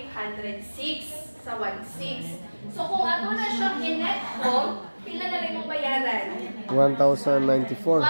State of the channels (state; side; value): inverted; both; correlation -1.00